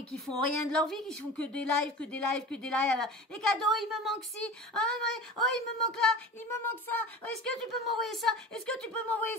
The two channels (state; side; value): normal; both; correlation 0.35